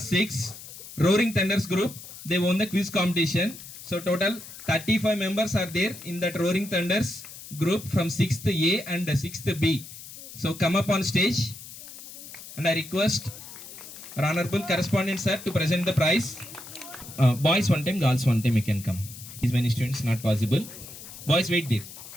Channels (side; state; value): left; noise; hiss, 14 dB below the sound